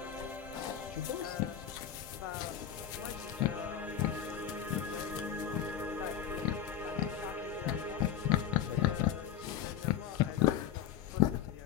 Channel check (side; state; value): right; quieter; 9.6 dB